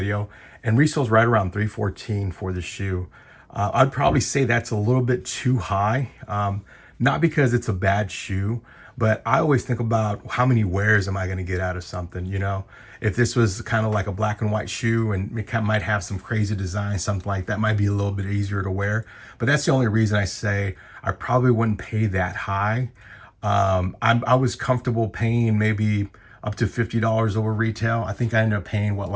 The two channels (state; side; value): identical; both; correlation 1.00